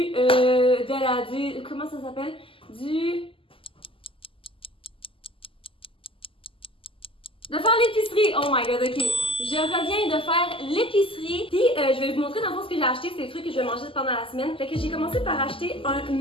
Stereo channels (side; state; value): right; late; 0.25 ms